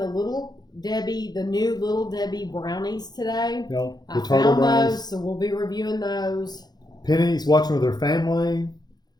the new Little Debbie brownies today. No, I found those, so we'll be reviewing those. Penny's watching with her family.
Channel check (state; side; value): late; right; 0.20 ms